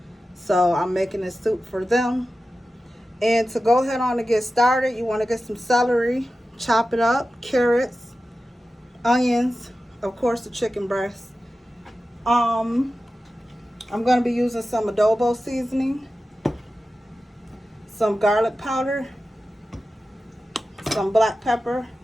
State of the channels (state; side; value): normal; both; correlation 0.93